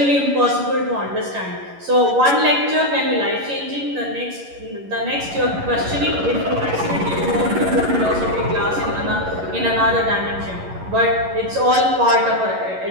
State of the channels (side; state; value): left; late; 11 ms